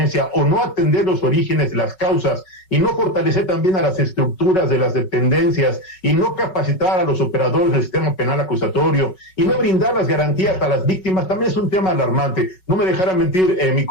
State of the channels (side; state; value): right; late; 5.4 ms